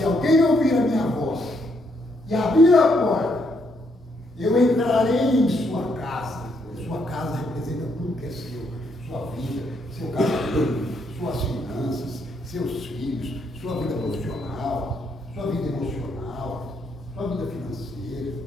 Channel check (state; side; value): normal; both; correlation 0.74